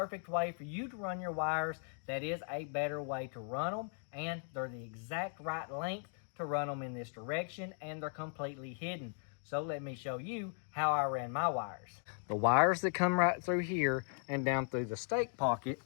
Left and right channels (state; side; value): silent; right; 53 dB below the other